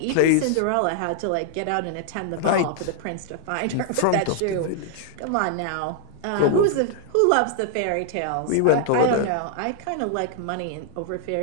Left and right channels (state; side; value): different; both; correlation 0.00